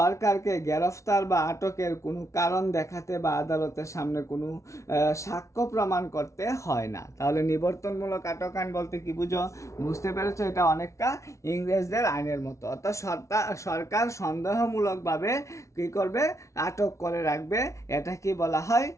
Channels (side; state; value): right; late; 0.14 ms